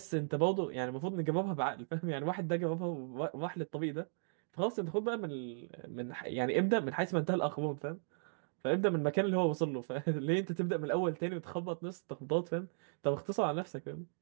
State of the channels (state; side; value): silent; left; digital silence